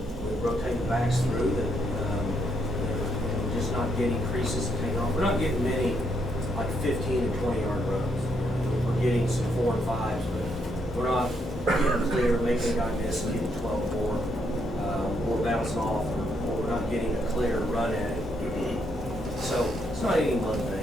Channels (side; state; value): both; normal; correlation 0.76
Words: we rotate the backs through that, and just not getting creases to take off. We're not getting many like 15 and 20-yard runs. We're getting some 4 and 5s, but we're not getting clear, making a guy miss and getting 12 more, or bouncing off, or we're not getting a clear run at it. So it's not any one